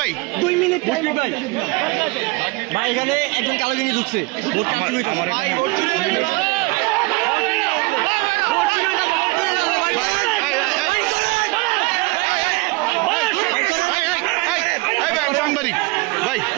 ভাই 2 মিনিট টাইম ভাই এখানে একজন কালো গেঞ্জি ঢুকছে ভোট কাটতে হইতাছে সাংবাদিক ভাই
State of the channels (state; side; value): quieter; left; 24.5 dB